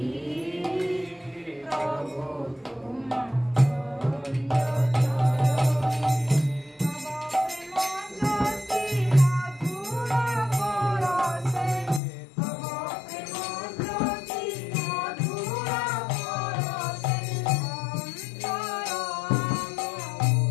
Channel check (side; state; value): right; drops out; at 12.0 s